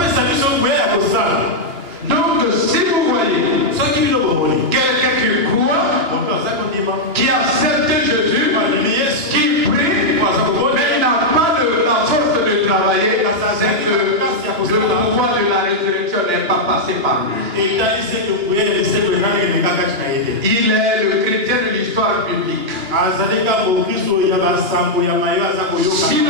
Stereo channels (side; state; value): left; late; 2.8 ms